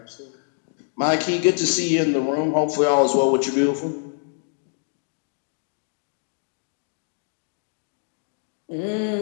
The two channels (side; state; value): right; silent; digital silence